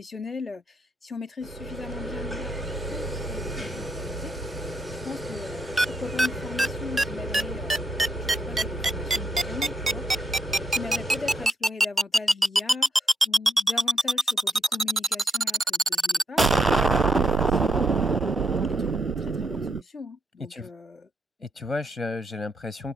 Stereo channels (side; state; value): both; normal; correlation 0.79